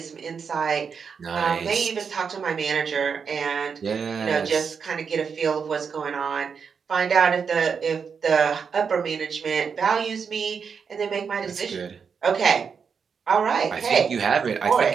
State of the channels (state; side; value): quieter; left; 6.2 dB